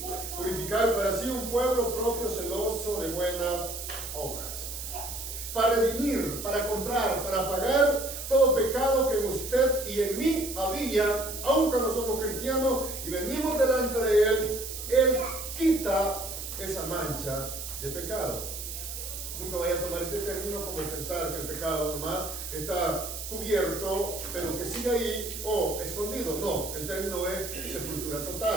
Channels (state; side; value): noise; right; hiss, 7 dB below the sound